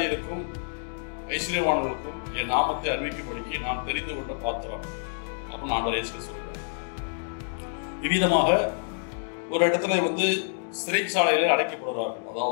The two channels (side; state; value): right; silent; digital silence